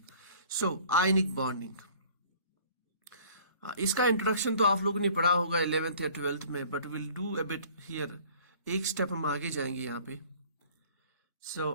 So, ionic bonding. इसका introduction तो आप लोगों ने पढ़ा होगा 11th या 12th में, but we'll do a bit here. एक स्टेप हम आगे जाएंगे यहाँ पे. So,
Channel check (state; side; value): inverted; both; correlation -0.51